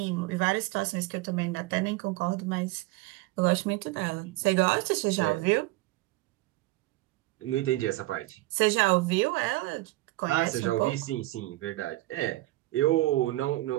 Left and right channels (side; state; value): left; quieter; 19.0 dB